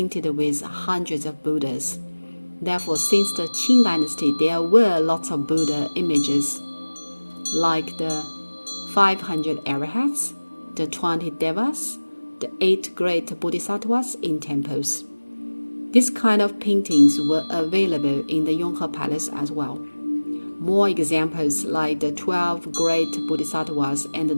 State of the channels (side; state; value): both; inverted; correlation -1.00